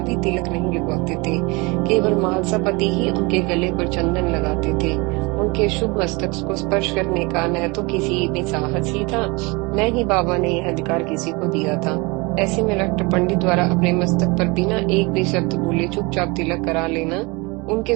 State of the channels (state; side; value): quieter; left; 26.6 dB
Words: तिलक नहीं लगवाते थे। केवल महालसापति ही उनके गले पर चंदन लगाते थे। उनके शुभ मस्तक को स्पर्श करने का न तो किसी में साहस ही था, न ही बाबा ने यह अधिकार किसी को दिया था। ऐसे में डॉक्टर पंडित द्वारा अपने मस्तक पर बिना एक भी शब्द बोले चुपचाप तिलक करा लेना उनके